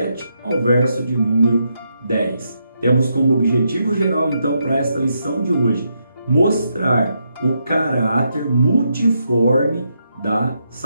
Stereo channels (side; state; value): both; inverted; correlation -0.81